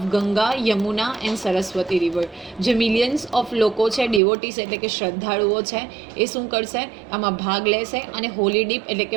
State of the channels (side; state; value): left; drops out; at 4.2 s